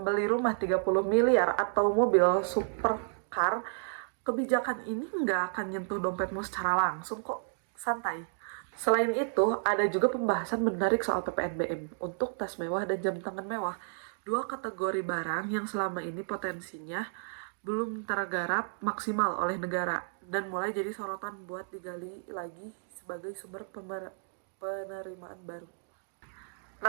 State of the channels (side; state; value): left; silent; digital silence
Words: rumah 30 miliar atau mobil supercar, kebijakan ini nggak akan nyentuh dompetmu secara langsung kok, santai. Selain itu, ada juga pembahasan menarik soal PPNBM untuk tas mewah dan jam tangan mewah. Dua kategori barang yang selama ini potensinya belum tergarap maksimal oleh negara dan mulai jadi sorotan buat digali lagi sebagai sumber penerimaan baru.